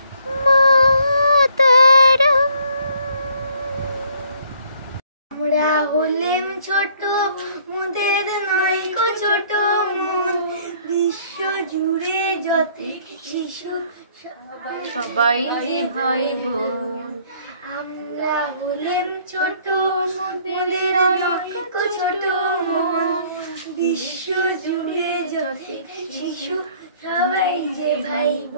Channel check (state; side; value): inverted; both; correlation -0.61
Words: मातरम। আমরা হলেম ছোট মোদের নয়কো ছোট মন বিশ্ব জুড়ে যত শিশু সবাই যে ভাই বোন। আমরা হলেম ছোট মোদের নয়কো ছোট মন বিশ্ব জুড়ে যত শিশু সবাই যে ভাই